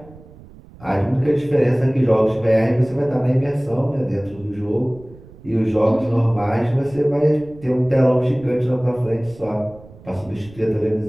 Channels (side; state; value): right; noise; rumble, 22 dB below the sound